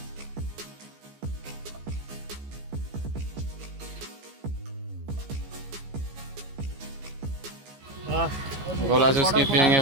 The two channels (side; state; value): left; late; 15 ms